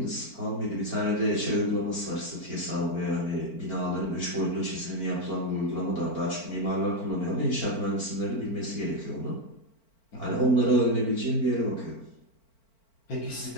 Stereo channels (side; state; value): right; late; 4.4 ms